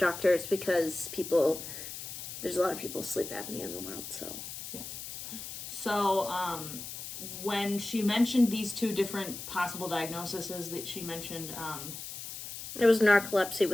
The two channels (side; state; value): left; noise; hiss, 9 dB below the sound